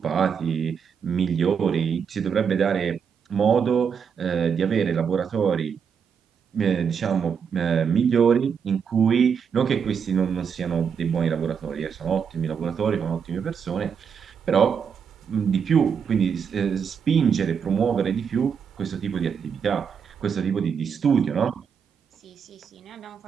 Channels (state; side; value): quieter; left; 6.8 dB